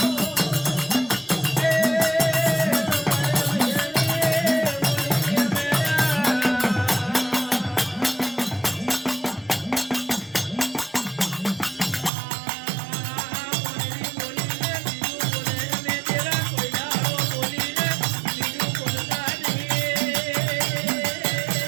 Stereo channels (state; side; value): drops out; left; at 12.1 s